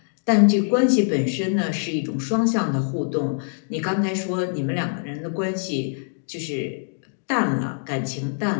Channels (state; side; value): silent; right; digital silence